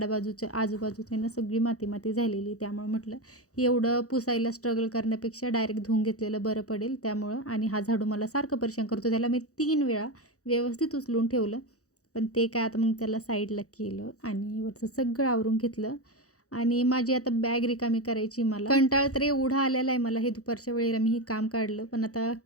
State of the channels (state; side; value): late; right; 0.66 ms